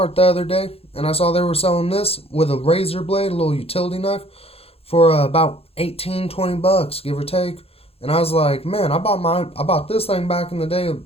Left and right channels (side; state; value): right; late; 0.28 ms